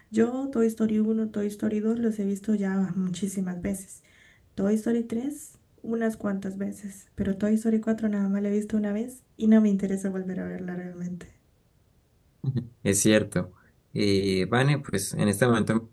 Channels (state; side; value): identical; both; correlation 1.00